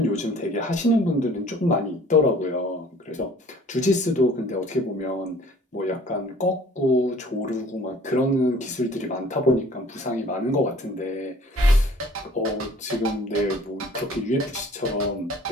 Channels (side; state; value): both; normal; correlation 0.52